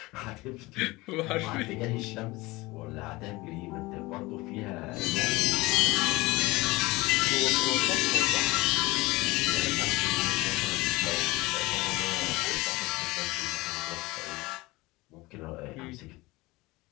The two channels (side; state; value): right; quieter; 21.5 dB